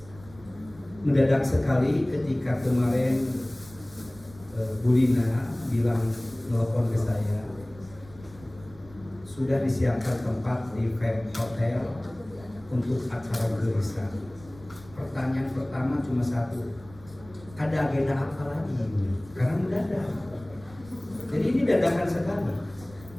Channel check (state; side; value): noise; right; rumble, 21 dB below the sound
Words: Mendadak sekali ketika kemarin Bu Lina bilang, nelfon ke saya, sudah disiapkan tempat di Fem Hotel untuk acara gereja. Pertanyaan pertama cuma satu, ada agenda apa lagi? Karena mendadak. Jadi ini dadakan sekali.